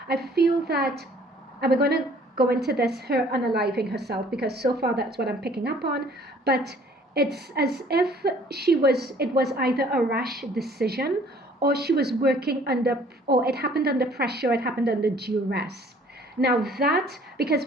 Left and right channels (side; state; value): both; normal; correlation 0.56